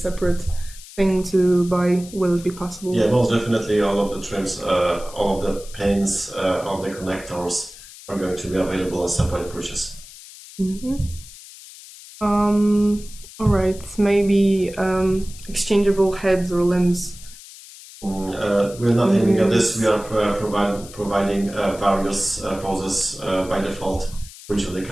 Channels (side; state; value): left; noise; hiss, 18 dB below the sound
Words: thing to buy. Will it be possible? Yeah, most definitely. All of the trims, all of the pins, all the connectors are going to be available as separate purchase. All right. Maybe exchangeable heads or limbs. We're not aiming at this. We are providing various poses by default for each of the